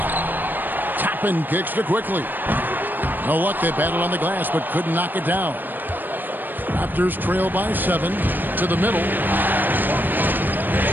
Toppin kicks to Quickly. No luck, they battled on the glass, but couldn't knock it down. Raptors trail by 7 to the middle.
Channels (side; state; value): left; late; 0.091 ms